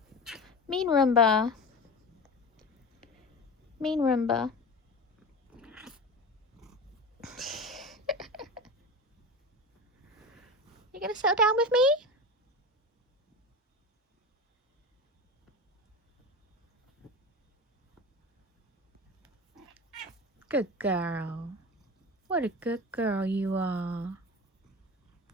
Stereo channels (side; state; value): both; normal; correlation 0.28